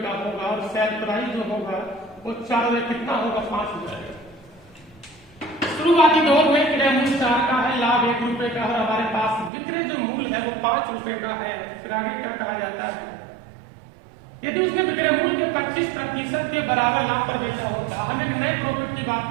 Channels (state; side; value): drops out; left; at 9.5 s